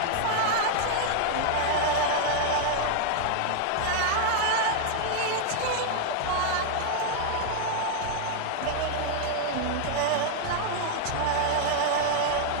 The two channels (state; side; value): different; both; correlation 0.00